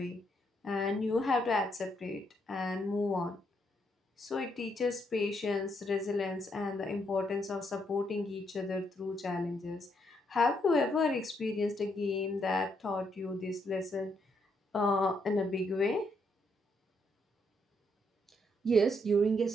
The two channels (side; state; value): both; normal; correlation 0.75